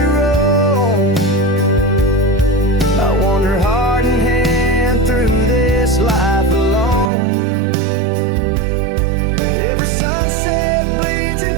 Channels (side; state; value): left; drops out; at 7.1 s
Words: roam, I wander heart in hand through this life alone. Every sunset bleeds